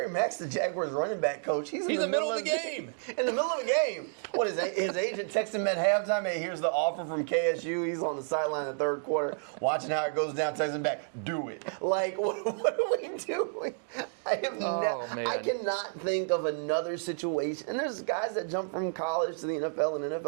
Mack's the Jaguars running back coach. He's in the middle of the game. In the middle of the game. What is his agent texted him at halftime? Hey, here's the offer from KSU. He's on the sideline in the third quarter, watching how it goes down. Texting back, do it. Like, what are we doing? I cannot think of another situation. And there's guys that jump from college to the NFL and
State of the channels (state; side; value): silent; left; digital silence